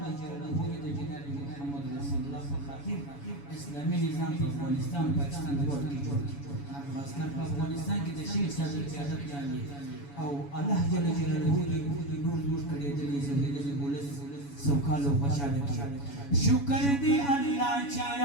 جلاله جناب محمد رسول الله خاطر اسلامي نظام په افغانستان پاکستان ورور کې جوړ خاصکر په افغانستان کې د شیخ صدر قیادت لاندې او الله جل جلاله نور نور کړي د زموږ ولس سوکاله او خوشاله کړي شکر دی الله چې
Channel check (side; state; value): right; late; 7.1 ms